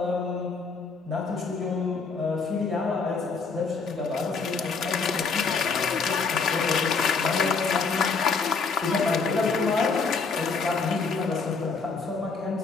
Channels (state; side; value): quieter; right; 4.7 dB